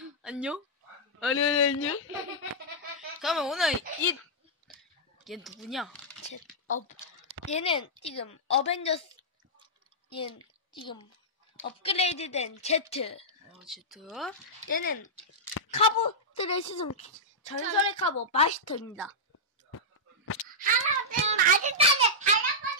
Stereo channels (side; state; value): both; normal; correlation -0.10